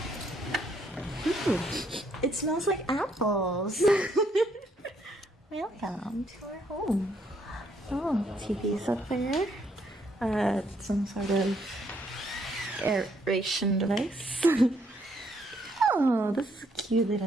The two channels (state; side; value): normal; both; correlation 0.70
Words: Ooh, it smells like apples. Welcome to our home. Oh, TV's up there. Some sort of aeration device. Oh, this is a cute